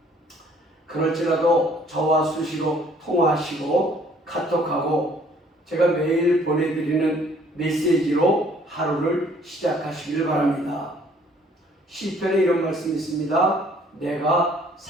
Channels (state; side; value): normal; both; correlation 0.59